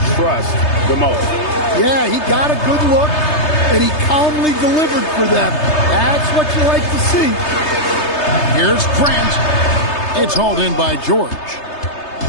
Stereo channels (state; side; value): late; right; 3.3 ms